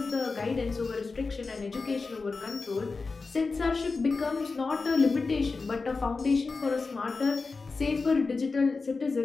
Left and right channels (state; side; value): quieter; right; 4.2 dB